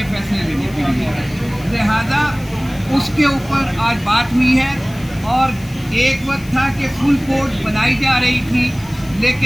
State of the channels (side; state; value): left; noise; hiss, 21 dB below the sound